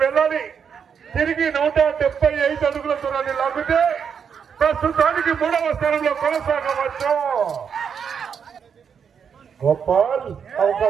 వెళ్ళాలి. తిరిగి 175 అడుగుల దూరాన్ని లాగితే ప్రస్తుతానికి 3వ స్థానంలో కొనసాగవచ్చు. గోపాల్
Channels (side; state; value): left; quieter; 7.0 dB